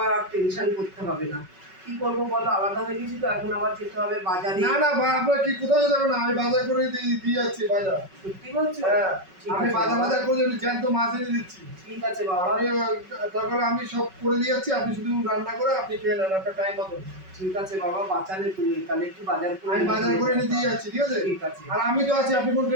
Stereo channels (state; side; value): late; left; 5.3 ms